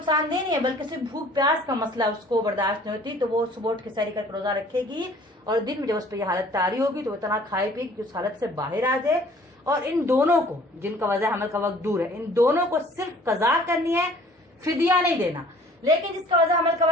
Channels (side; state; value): both; normal; correlation 0.53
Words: دہ نہیں ہے بلکہ صرف بھوک پیاس کا مسئلہ اس کو برداشت نہیں ہوتی، تو وہ صبح اٹھ کے سحری کر کے روزہ رکھے گی، اور دن میں جب اس پہ یہ حالت طاری ہوگی تو وہ اتنا کھائے پیے گی کہ اس حالت سے باہر آ جائے۔ اور ان دونوں کو، جن کا وضع حمل کا وقت دور ہے، ان دونوں کو صرف قضا کرنی ہے، فدیہ نہیں دینا۔ لیکن جس کا وضع حمل کا